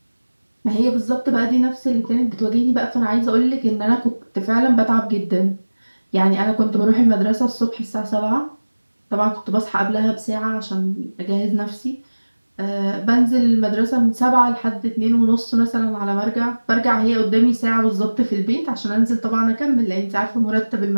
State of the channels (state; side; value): inverted; both; correlation -1.00